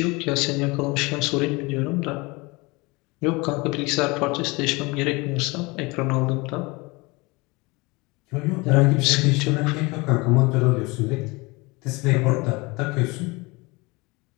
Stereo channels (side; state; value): right; quieter; 25.2 dB